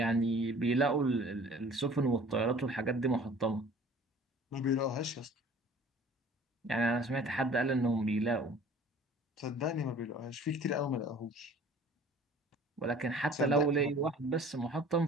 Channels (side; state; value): both; normal; correlation 0.49